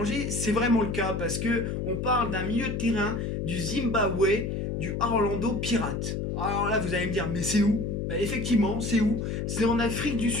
c'est vraiment le cas parce que on parle d'un milieu de terrain du Zimbabwe, du Orlando Pirates. Alors là, vous allez me dire, mais c'est où? Bah, effectivement, c'est où? C'est en Afrique du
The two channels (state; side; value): noise; left; hum, 2 dB below the sound